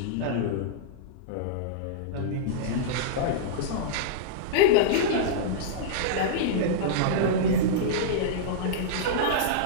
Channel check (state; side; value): different; both; correlation -0.03